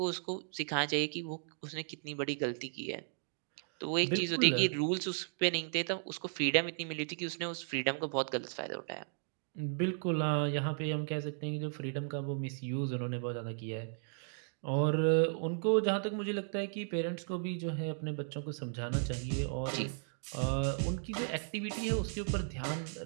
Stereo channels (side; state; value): left; silent; digital silence